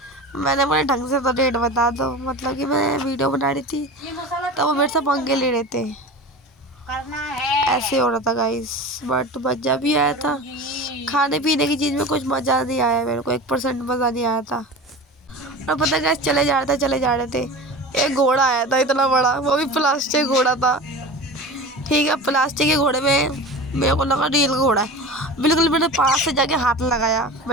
मैंने बोला ढंग से तो रेट बता दो। मतलब कि मैं वीडियो बना रही थी तो वो मेरे से पंगे ले रहे थे, ऐसे हो रहा था गाइस। बट मज़ा भी आया था। खाने पीने की चीज़ में कुछ मज़ा नहीं आया मेरे को, 1% मज़ा नहीं आया था। और पता है गाइस चले जा रहे थे, एक घोड़ा आया था इतना बड़ा, वो भी प्लास्टिक घोड़ा था। ठीक है, प्लास्टिक के घोड़े में मेरे को लगा रियल घोड़ा है। बिल्कुल मैंने पास से जाके हाथ लगाया,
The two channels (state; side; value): normal; both; correlation 0.33